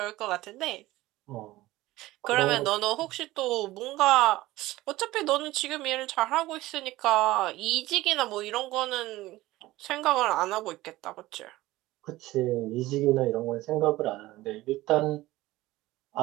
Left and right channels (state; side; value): quieter; left; 17.7 dB